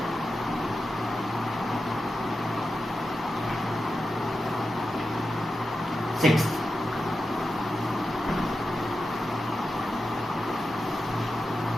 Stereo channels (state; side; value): normal; both; correlation 0.91